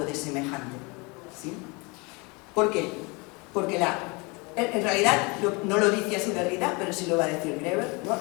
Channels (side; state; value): right; quieter; 28.1 dB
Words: de semejante. ¿Sí? ¿Por qué? Porque en realidad, no lo dice así Derrida, pero sí lo va a decir Greber, ¿no?